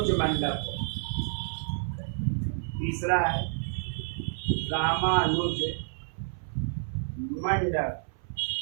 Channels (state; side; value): silent; left; 58 dB below the other